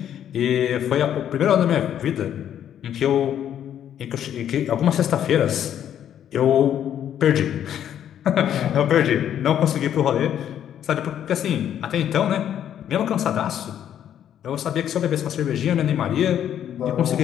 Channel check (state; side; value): quieter; right; 10.1 dB